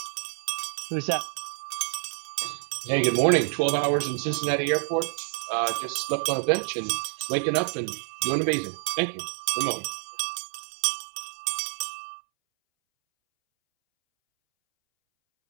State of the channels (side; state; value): left; silent; 60 dB below the other